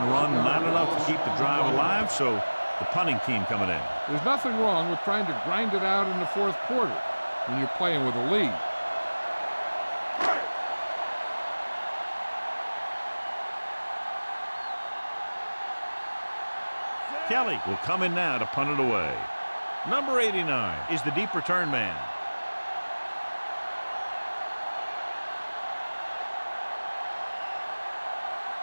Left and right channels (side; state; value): both; inverted; correlation -1.00